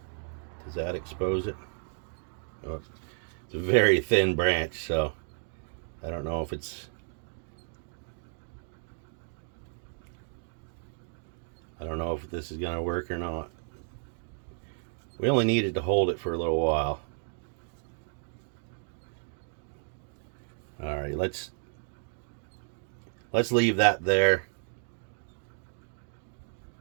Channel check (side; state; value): left; silent; 56 dB below the other